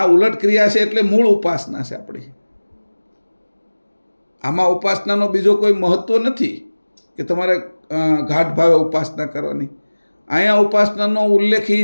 ઉલટ ક્રિયા છે, એટલે મૂળ ઉપાસના છે આપણી. આમાં ઉપાસનાનો બીજો કોઈ મહત્વ નથી કે તમારે ઘાટ ભાવે ઉપાસના કરવાની. અહીંયા ઉપાસનાનો ઉલ્લેખ એ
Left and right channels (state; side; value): inverted; both; correlation -1.00